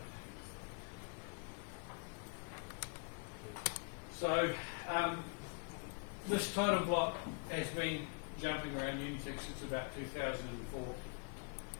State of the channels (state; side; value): quieter; right; 36.5 dB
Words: So this title block has been jumping around Unitec since about 2004.